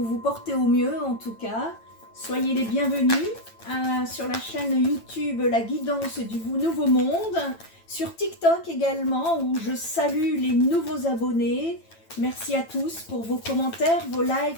vous portez au mieux en tout cas. Soyez les bienvenus sur la chaîne YouTube La Guidance du Nouveau Monde. Sur TikTok également où je salue les nouveaux abonnés. Merci à tous pour vos commentaires, vos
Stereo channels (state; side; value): late; right; 9.0 ms